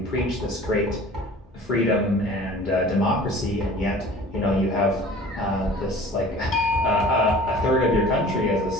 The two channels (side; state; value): both; normal; correlation 0.45